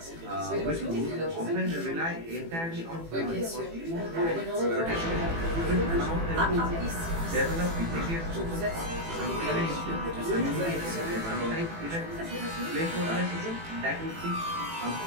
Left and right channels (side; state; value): left; late; 18 ms